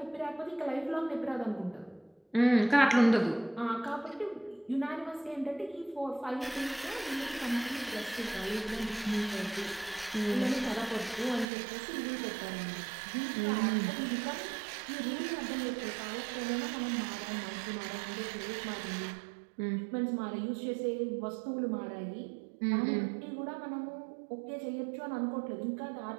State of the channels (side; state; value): left; drops out; at 11.5 s